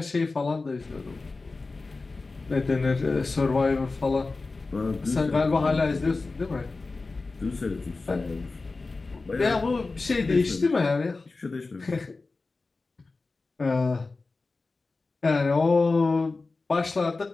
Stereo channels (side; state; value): right; quieter; 3.7 dB